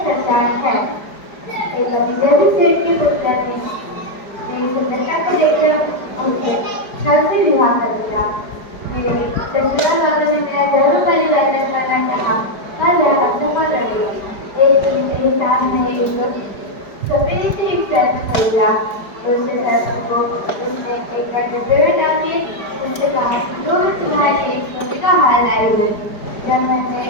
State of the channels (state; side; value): late; right; 4.9 ms